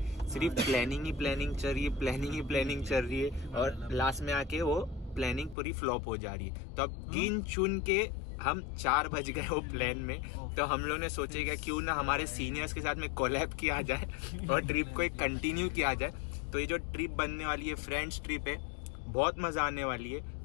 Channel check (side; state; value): right; drops out; at 5.6 s